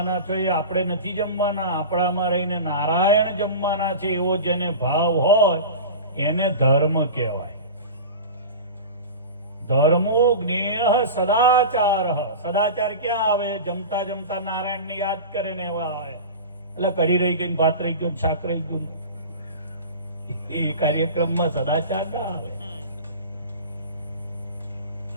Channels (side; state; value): both; inverted; correlation -0.31